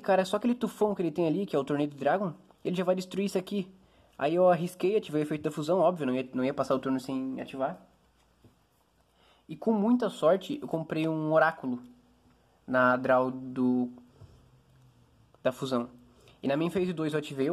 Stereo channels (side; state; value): both; identical; correlation 1.00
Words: tufão que ele tem ali, que é o Torneio do Dragon, ele já vai destruir isso aqui. Aí eu arrisquei, ativei o efeito da fusão, óbvio, não ia passar o turno sem ativar. E com muita sorte, eu comprei um oráculo na draw da fusão. E na minha phase 2 eu ativei